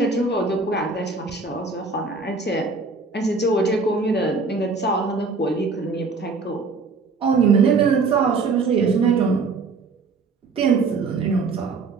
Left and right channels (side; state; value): left; quieter; 4.3 dB